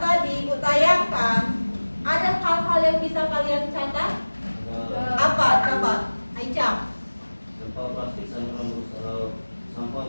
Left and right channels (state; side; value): inverted; both; correlation -1.00